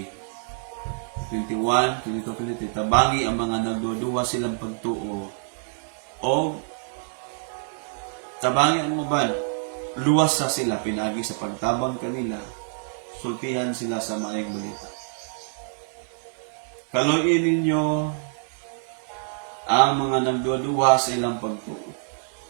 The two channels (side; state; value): left; silent; 61 dB below the other